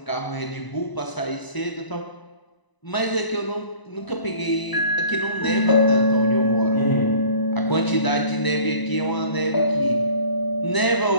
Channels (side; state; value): right; late; 1.0 ms